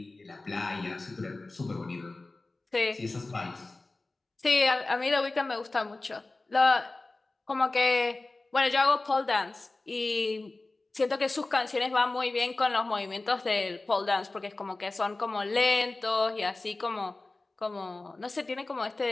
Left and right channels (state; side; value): quieter; right; 3.2 dB